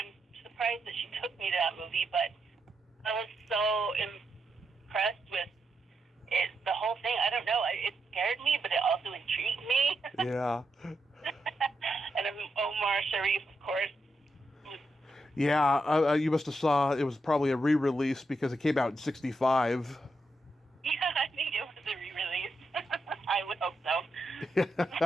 surprised that she took me to that movie, but I was so impressed with it, the whole thing. I don't know, it scared me, but it also intrigued me. Yeah. And Omar Sharif, of course. Yeah, you must have saw, it was probably a re-release because it came out in 65. Yeah, I think it was a re-release. I would hope so.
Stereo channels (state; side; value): normal; both; correlation 0.83